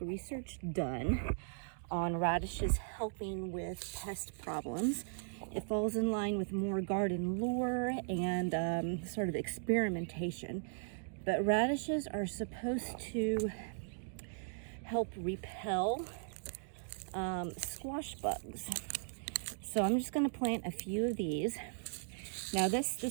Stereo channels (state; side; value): silent; left; digital silence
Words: done on radishes helping with pest problems. It falls in line with more garden lore and sort of experimentation. But radishes are supposed to help repel squash bugs. So I'm just going to plant a few of these. Now this